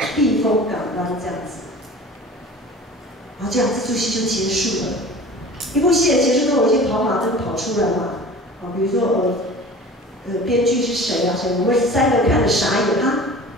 避风港湾这样子。然后这样这出戏就结束了。一部戏的结束都有一些跑马灯跑出来嘛，比如说编剧是谁啊？谁？我们3个看着傻眼啊，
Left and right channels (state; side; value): normal; both; correlation 0.41